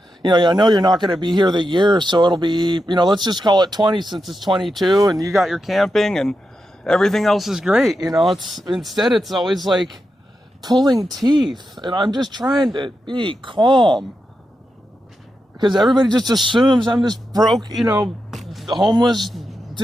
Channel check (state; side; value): normal; both; correlation 0.88